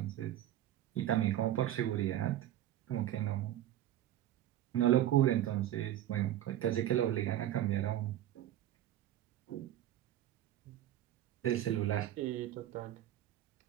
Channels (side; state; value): left; quieter; 12.6 dB